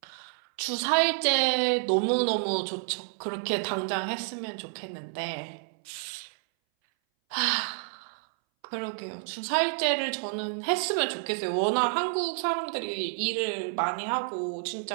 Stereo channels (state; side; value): silent; left; 58 dB below the other